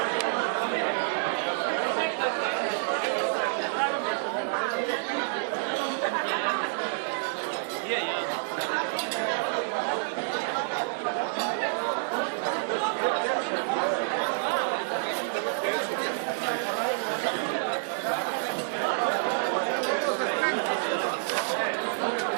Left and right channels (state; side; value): silent; left; 59 dB below the other